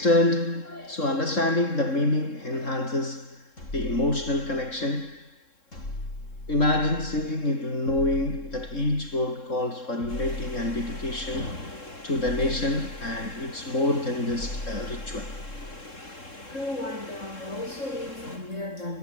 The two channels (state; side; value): late; right; 3.7 ms